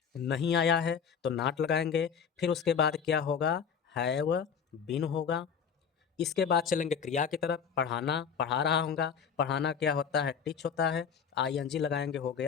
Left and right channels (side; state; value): right; quieter; 6.9 dB